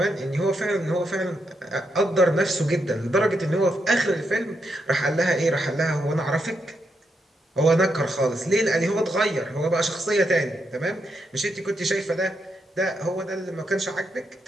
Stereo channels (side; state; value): both; normal; correlation 0.82